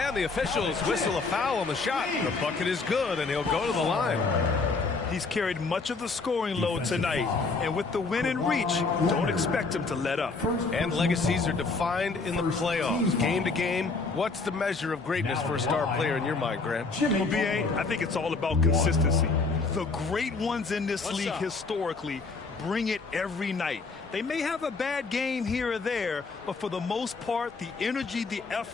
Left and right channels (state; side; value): quieter; right; 4.1 dB